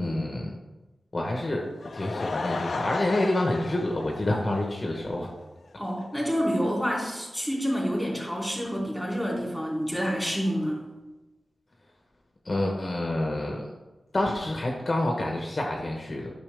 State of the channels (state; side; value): normal; both; correlation 0.95